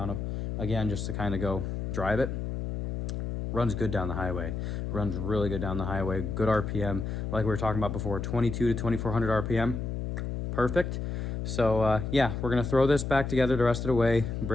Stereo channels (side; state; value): left; noise; hum, 4 dB below the sound